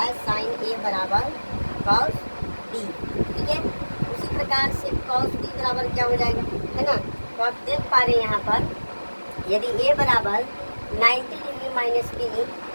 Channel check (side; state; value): both; inverted; correlation -1.00